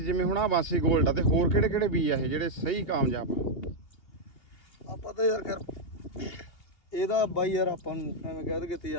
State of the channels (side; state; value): right; late; 2.8 ms